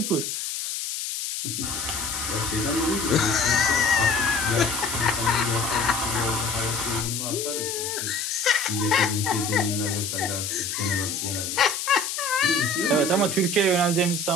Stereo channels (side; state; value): left; noise; hiss, 4 dB below the sound